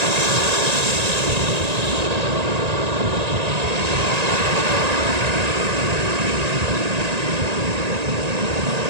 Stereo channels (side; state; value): left; late; 1.9 ms